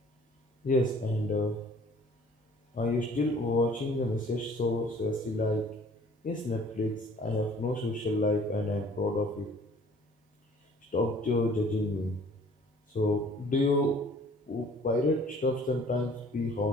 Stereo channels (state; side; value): normal; both; correlation 0.53